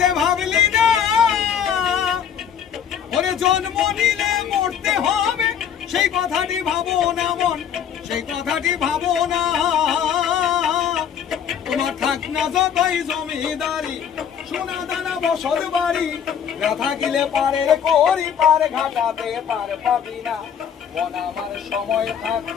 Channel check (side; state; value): right; quieter; 8.4 dB